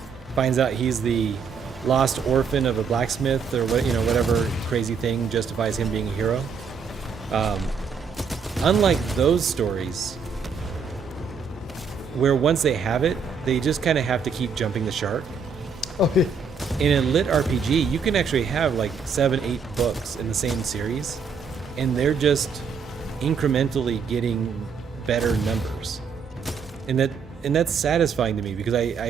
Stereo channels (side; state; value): left; quieter; 5.7 dB